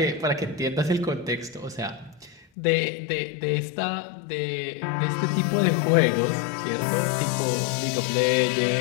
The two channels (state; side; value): drops out; right; at 2.5 s